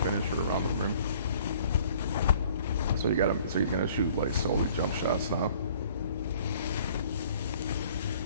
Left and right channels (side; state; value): both; inverted; correlation -0.55